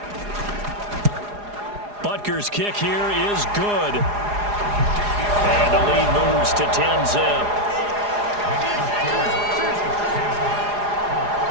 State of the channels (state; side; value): late; left; 4.9 ms